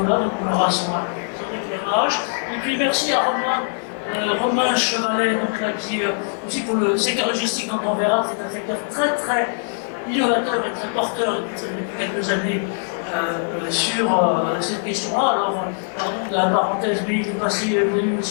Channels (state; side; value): silent; right; 64 dB below the other